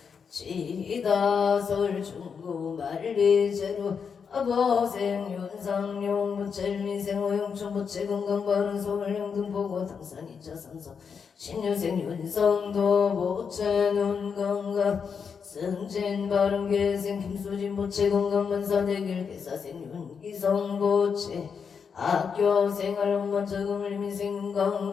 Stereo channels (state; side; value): quieter; right; 6.3 dB